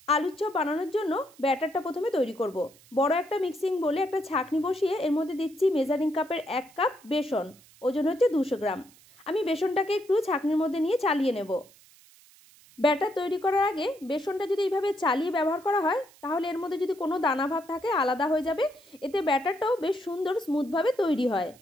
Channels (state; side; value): noise; right; hiss, 26 dB below the sound